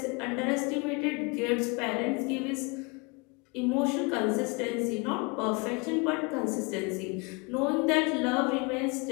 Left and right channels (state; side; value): quieter; right; 29.7 dB